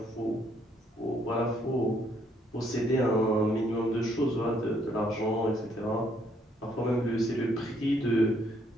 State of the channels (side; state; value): both; normal; correlation 0.69